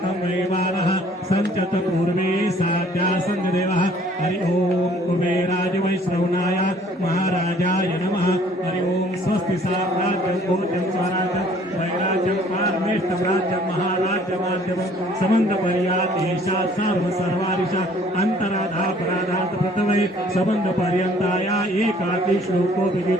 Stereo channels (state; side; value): normal; both; correlation 0.57